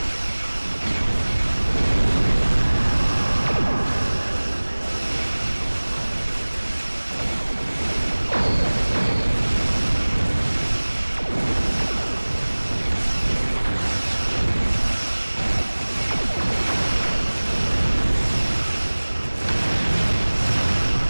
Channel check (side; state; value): both; inverted; correlation -1.00